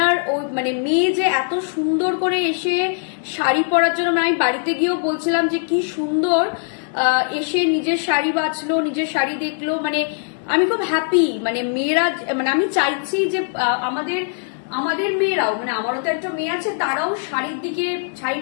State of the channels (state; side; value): silent; right; 65 dB below the other